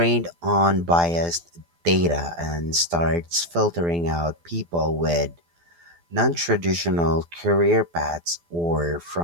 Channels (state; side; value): late; left; 12 ms